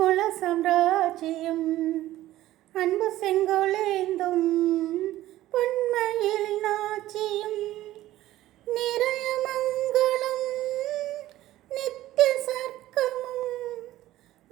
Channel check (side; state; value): left; quieter; 15.0 dB